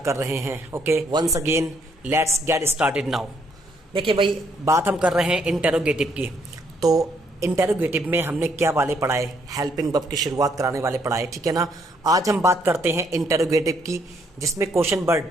कर रहे हैं. Okay, once again let's get started now. देखिए भाई, बात हम कर रहे हैं इंटेरोगेटिव की. तो इंटेरोगेटिव में हमने क्या वाले पढ़ाए? हेल्पिंग वर्ब की शुरुआत कराने वाले पढ़ाए, ठीक है ना. आज हम बात करते हैं इंटेरोगेटिव की, जिसमें क्वेश्चन वर्ड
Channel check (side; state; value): both; normal; correlation 0.70